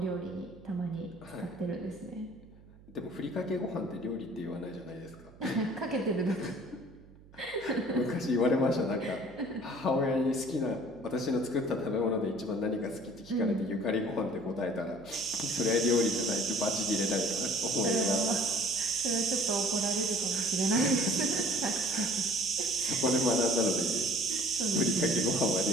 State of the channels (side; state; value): right; noise; hum, 23 dB below the sound